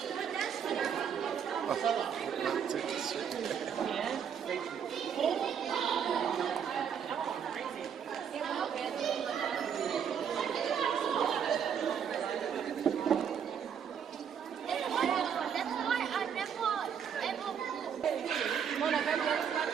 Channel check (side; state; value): left; quieter; 7.8 dB